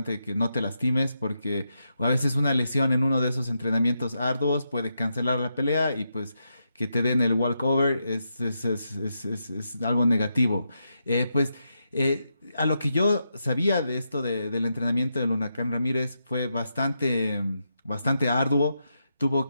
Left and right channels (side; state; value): both; inverted; correlation -0.84